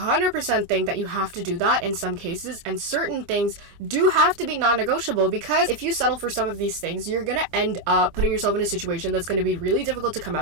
think that you have to do that in some cases, and certain things do have to be non-negotiable, because if you settle for some of these things, you're going to end up putting yourself in a situation that's going to be really difficult to come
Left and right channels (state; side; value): late; left; 25 ms